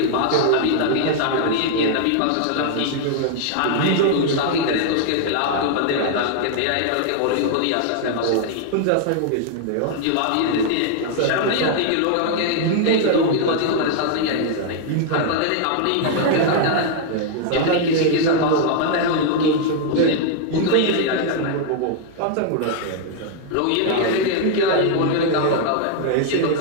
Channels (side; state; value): both; different; correlation 0.00